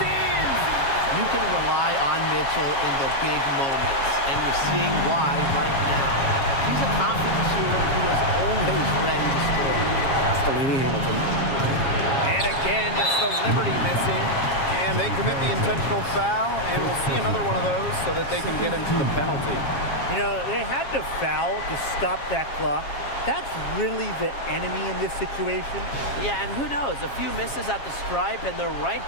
in! You can rely on Mitchell in the big moments, and you're seeing why right now. She's a confident shooter who is always ready to score. That's Delaney Hamilton. And again, it's the Liberty missing. And they commit the intentional foul, and we'll see another one of those so that they can get into the penalty. You know, they had to foul to stop that clock. That's really the enemy in this situation. Yeah, and who knows? A few misses at the stripe, and they're right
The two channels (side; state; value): right; late; 7.3 ms